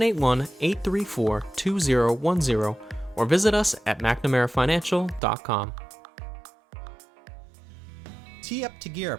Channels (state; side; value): drops out; left; at 5.2 s